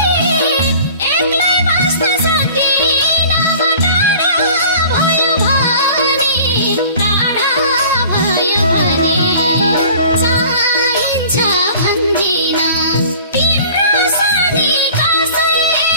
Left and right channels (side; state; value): both; inverted; correlation -0.46